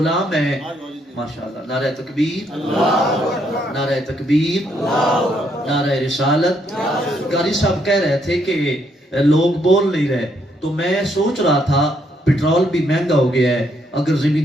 ہیں ماشاءاللہ نعرہ تکبیر نعرہ تکبیر نعرہ رسالت قاری صاحب کہہ رہے تھے کہ لوگ بول نہیں رہے تو میں سوچ رہا تھا پیٹرول بھی مہنگا ہو گیا ہے اگر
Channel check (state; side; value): normal; both; correlation 0.73